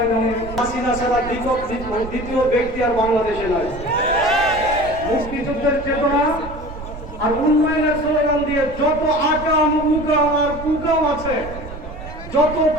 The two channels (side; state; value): right; noise; rumble, 12 dB below the sound